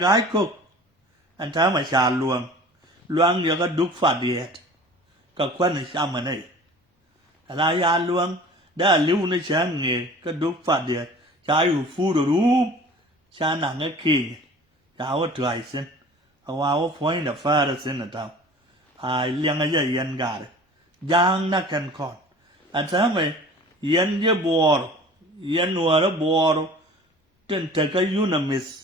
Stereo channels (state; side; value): normal; both; correlation 0.44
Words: cô anh thấy mà xà luang giờ có đúc phạt điện có quan này sao mà này là ya luang đã lưu nó sáng nghề có đúc phạt điện trái u phu đồ rúp xa nặng cái kỳ cháu có trời xin hoa có phối là pha ra xin là tao liên cái gì yên gà đấy giang nó cần còn anh thấy mà yên với bò yên nuôi nó bò trên thế cái unamis